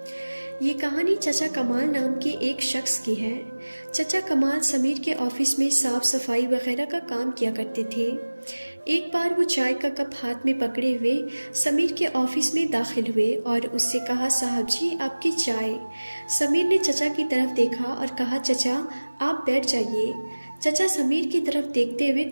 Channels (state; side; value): inverted; both; correlation -1.00